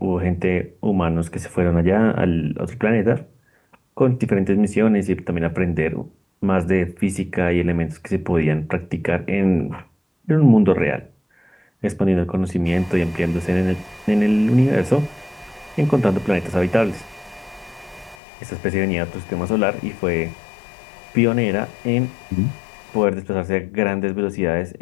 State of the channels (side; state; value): right; drops out; at 18.2 s